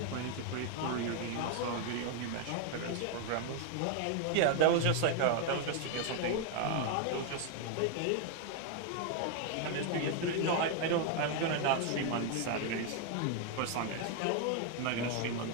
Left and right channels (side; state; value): both; different; correlation 0.00